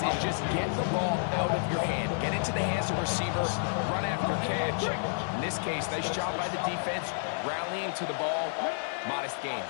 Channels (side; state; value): right; silent; digital silence